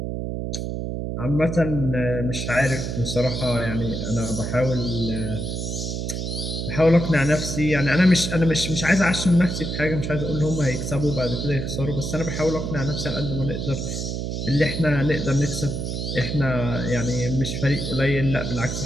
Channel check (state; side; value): noise; right; hum, 3 dB below the sound